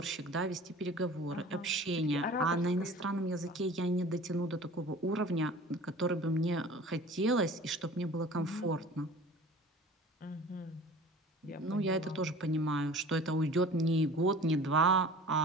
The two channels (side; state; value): both; normal; correlation 0.43